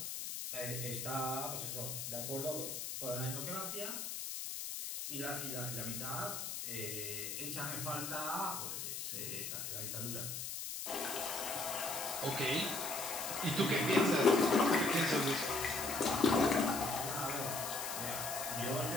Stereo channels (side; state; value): left; noise; hiss, 5 dB below the sound